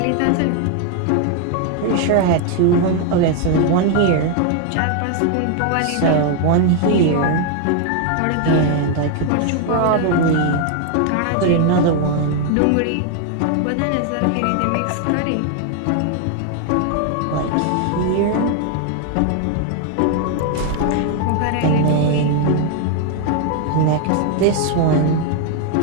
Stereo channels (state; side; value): different; both; correlation 0.00